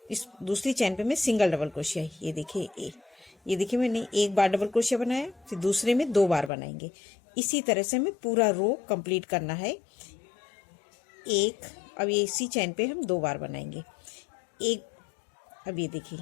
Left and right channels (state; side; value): drops out; right; at 6.5 s